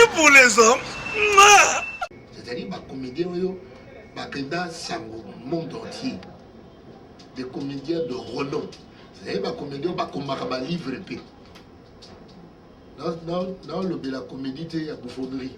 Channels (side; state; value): both; identical; correlation 1.00